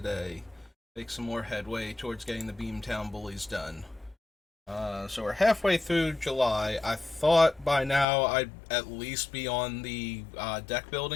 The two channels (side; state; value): right; drops out; at 8.1 s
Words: Make some more headway towards getting the Beamtown Bullies done. So we're halfway through July. I thought by now I'd at least be on the deck